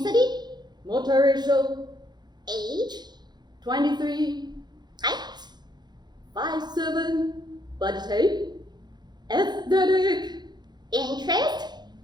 multiracial, age, 23, height, 5'7", body type, aesthetic, interest,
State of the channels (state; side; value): late; left; 0.21 ms